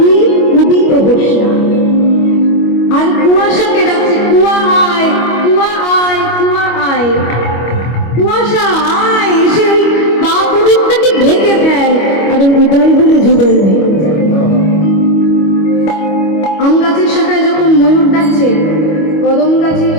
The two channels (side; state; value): right; late; 25 ms